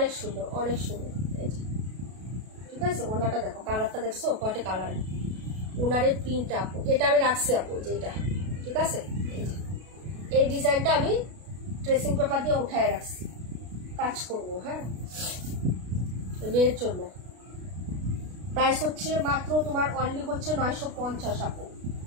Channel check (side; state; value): left; late; 33 ms